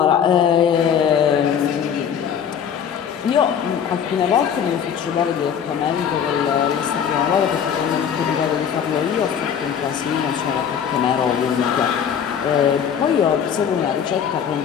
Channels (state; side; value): quieter; right; 8.1 dB